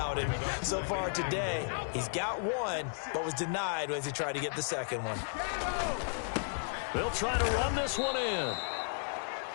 And so far today, he's got 1, but was denied as he tried to get the 2nd one. They'll try to run this one in.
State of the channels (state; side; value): silent; right; digital silence